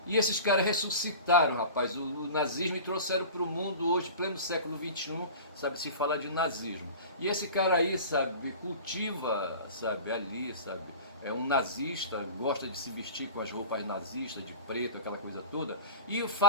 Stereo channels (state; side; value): inverted; both; correlation -0.37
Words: E esses caras ressuscitaram, rapaz, o nazismo e trouxeram para o mundo hoje, pleno século XXI, sabe, se fala de nazismo. E esse cara aí, sabe, cultiva, sabe, ali, sabe, é um nazista, gosta de se vestir com as roupas nazistas, de preto, aquela coisa toda, e